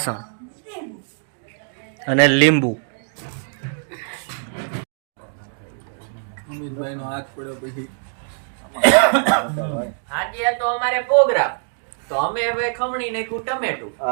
અને લીંબુ. અમિતભાઈનો હાથ પડ્યો પછી આજે તો અમારે પ્રોગ્રામ તો અમે ભાઈ ખમણી નાખ્યું ટમેટું.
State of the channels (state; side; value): silent; left; 64 dB below the other